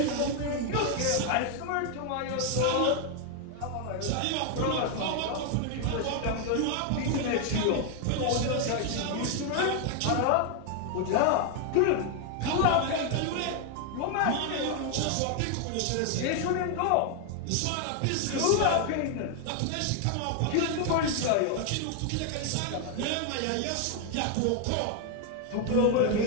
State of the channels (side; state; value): both; different; correlation 0.00